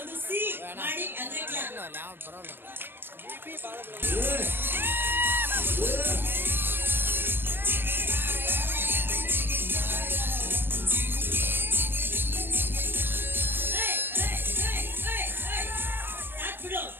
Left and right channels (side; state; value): left; late; 0.10 ms